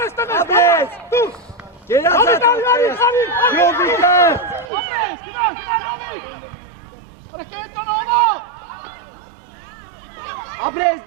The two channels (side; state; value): left; drops out; at 4.7 s